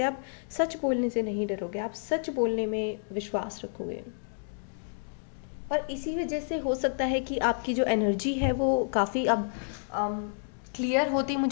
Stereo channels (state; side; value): silent; right; digital silence